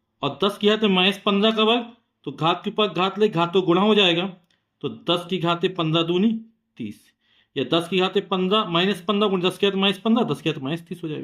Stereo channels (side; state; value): both; identical; correlation 1.00